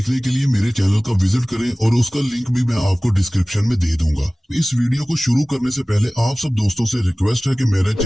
के लिए मेरे चैनल का विजिट करें और उसका लिंक भी मैं आपको डिस्क्रिप्शन में दे दूंगा। इस वीडियो को शुरू करने से पहले आप सब दोस्तों से रिक्वेस्ट है कि मेरे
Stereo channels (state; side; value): normal; both; correlation 0.98